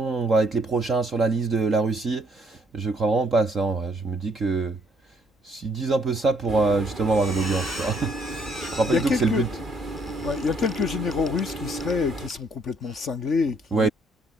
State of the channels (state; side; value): normal; both; correlation 0.67